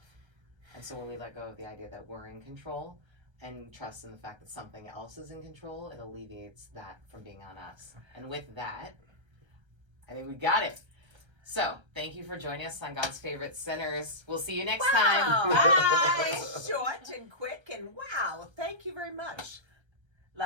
And so when we let go of the idea that we're in control and trust in the fact that something else is in control, it alleviates that from being on us. And with that, I think we got it. So, thank you for joining us on God's Favorite Sinners. We'll see you next time. Bye! Short and quick, and wow, thank you very much.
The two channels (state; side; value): late; left; 1.3 ms